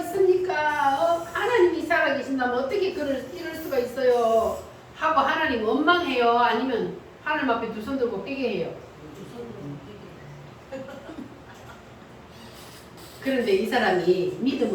하나님이 살아계신다면 어떻게 이럴 수가 있어요? 하고 하나님 원망해요? 아니면 하나님 앞에 두 손 들고 회개해요? 그런데 이 사람이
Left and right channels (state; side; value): identical; both; correlation 1.00